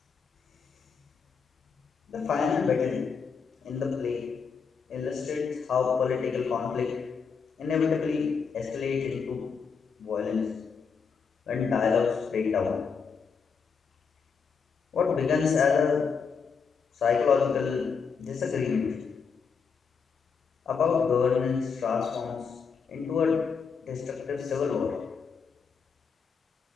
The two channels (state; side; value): quieter; right; 5.8 dB